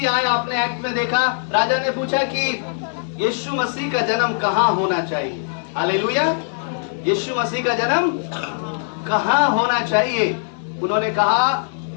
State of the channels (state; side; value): silent; right; digital silence